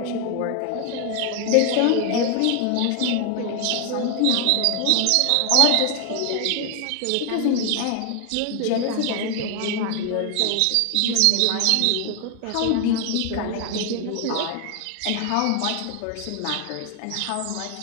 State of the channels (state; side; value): different; both; correlation 0.00